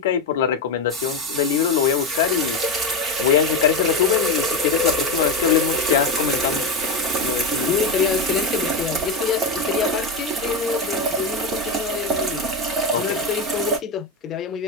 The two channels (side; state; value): right; quieter; 3.0 dB